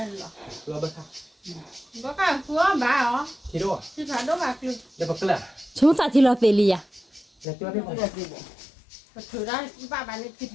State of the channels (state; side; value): drops out; right; at 7.5 s